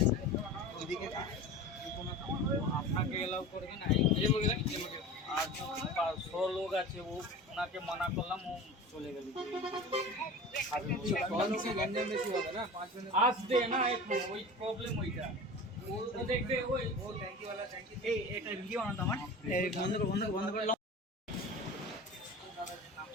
ওইদিকে আপনাকে এলাও করবে না। আর 100 লোক আছে, ওনাকে মানা করলাম, ও চলে গেল। আসবে না, ওই প্রবলেম ওইটা দেখবে। ওই এটা ভিডিও বানাতো আমার, বন্ধ করে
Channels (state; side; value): normal; both; correlation 0.35